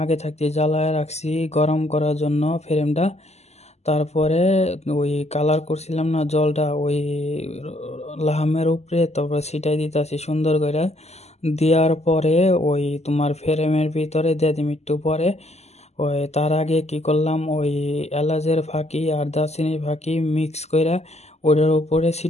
আগে থাকতে জ্বালায় রাখছি গরম করার জন্য ফ্রেমটা। তারপরে ওই কালার করছিলাম না জলটা, ওই লাহামের উপরে তারপরে ছিটাই দিতেছি সুন্দর করে। দেওয়ার পরে ওই তোমার ফ্রেমের ভিতরে দিয়ে দিম একটু পরে। ওই তার আগে কি করলাম, ওই এলাচের ফাঁকি আর দারচিনির ফাঁকি মিক্স করে ওটার উপরে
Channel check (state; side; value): late; right; 0.32 ms